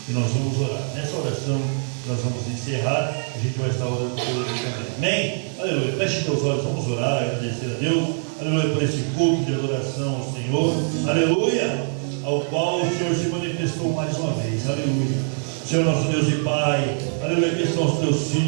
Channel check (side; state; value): left; silent; 63 dB below the other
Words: E nós vamos orar. Nessa oração, nós vamos encerrar. A gente vai estar orando por ele também. Amém? Aleluia. Feche seus olhos, vamos orar, agradecer a Deus. Aleluia, por esse culto de adoração ao Senhor. Aleluia, ao qual o Senhor se manifestou mais uma vez. Aleluia. Senhor nosso Deus e Pai. Aleluia, que estão os teus